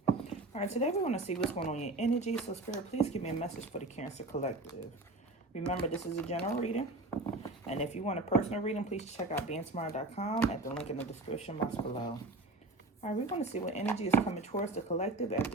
Alright, today we're going to see what's going on in your energy. So Spirit, please give me a message for the Cancer Collective. Remember, this is a general reading. And if you want a personal reading, please check out BeingTymara.com at the link in the description box below. Alright, we're going to see what energy is coming towards the collective at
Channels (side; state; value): left; quieter; 3.0 dB